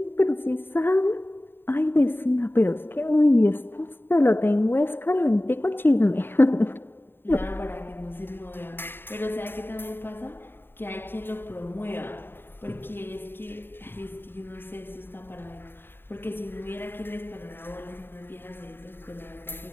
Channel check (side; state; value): right; late; 0.10 ms